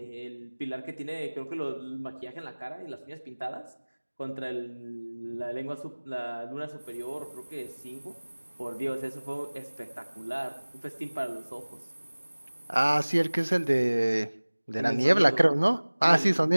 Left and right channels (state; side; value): inverted; both; correlation -1.00